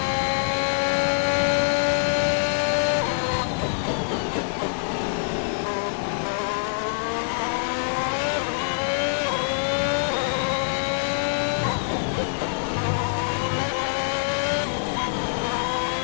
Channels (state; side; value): silent; right; digital silence